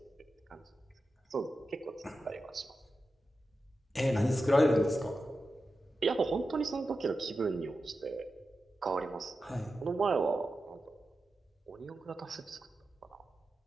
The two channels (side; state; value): both; normal; correlation 0.91